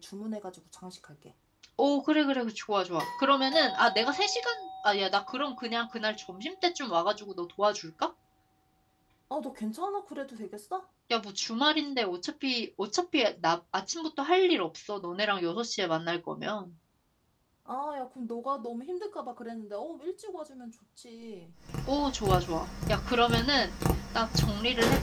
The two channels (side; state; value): both; identical; correlation 1.00